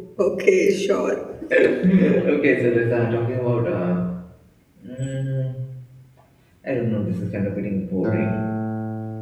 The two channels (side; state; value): both; identical; correlation 1.00